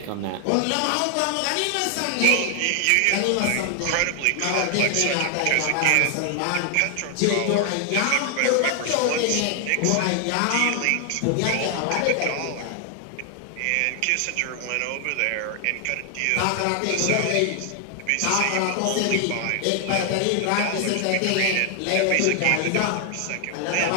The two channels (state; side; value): different; both; correlation 0.00